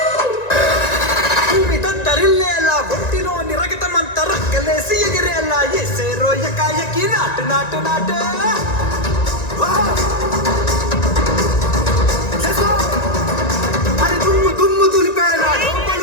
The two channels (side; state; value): right; late; 1.9 ms